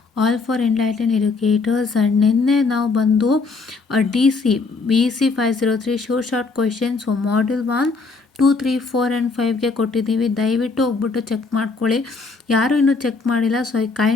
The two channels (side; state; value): right; quieter; 4.2 dB